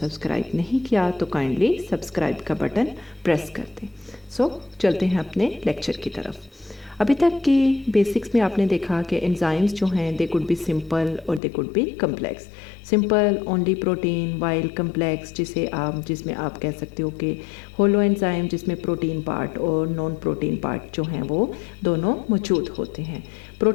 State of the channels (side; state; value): right; drops out; at 11.4 s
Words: नहीं किया तो काइंडली सब्सक्राइब का बटन प्रेस कर दें। सो चलते हैं अपने लेक्चर की तरफ। अभी तक की बेसिक्स में आपने देखा कि एंजाइम्स जो हैं दे कुड बी सिंपल और they could be complex. Simple only protein, while complex जिसमें आप कह सकते हो कि होलो एंजाइम जिसमें प्रोटीन पार्ट और नॉन प्रोटीन पार्ट जो हैं वो दोनों मौजूद होते हैं।